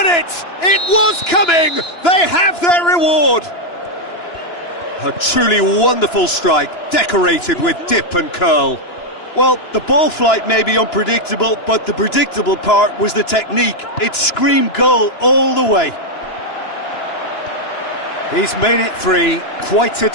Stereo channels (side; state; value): right; late; 2.9 ms